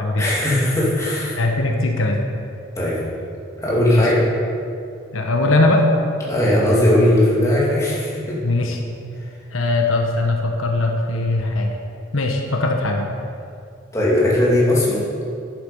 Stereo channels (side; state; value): both; normal; correlation 0.57